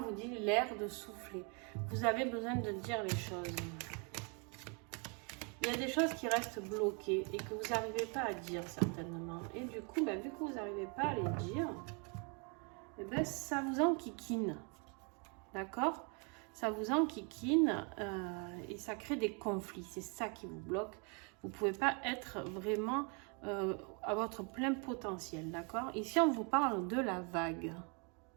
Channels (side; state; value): left; quieter; 35.1 dB